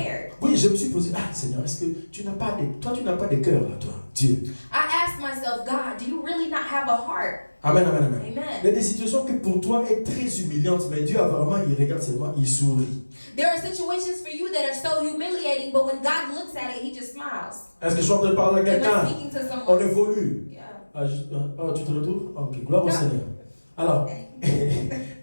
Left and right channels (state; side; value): inverted; both; correlation -1.00